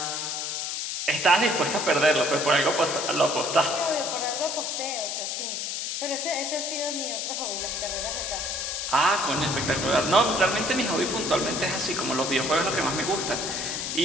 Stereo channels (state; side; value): noise; left; hiss, 3 dB below the sound